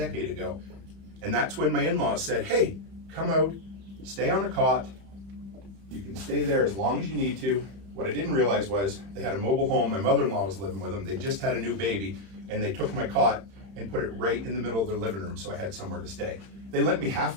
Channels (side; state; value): left; late; 31 ms